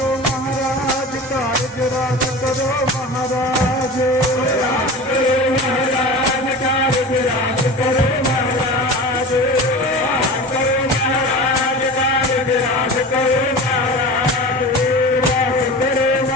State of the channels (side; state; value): both; normal; correlation 0.33